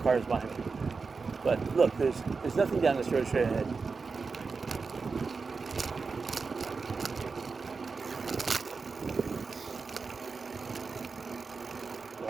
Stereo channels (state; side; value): quieter; left; 4.6 dB